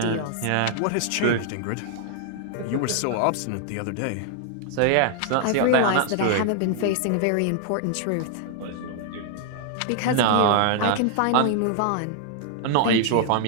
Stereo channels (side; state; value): both; different; correlation 0.00